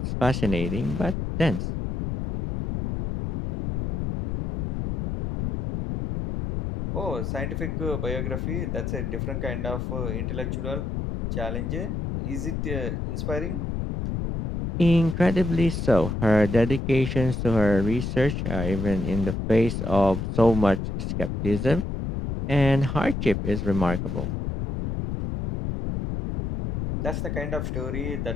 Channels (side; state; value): left; noise; rumble, 3 dB below the sound